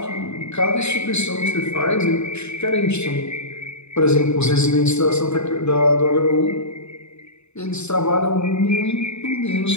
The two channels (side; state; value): right; late; 0.81 ms